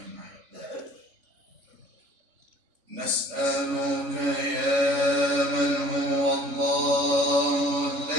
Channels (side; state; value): left; late; 3.5 ms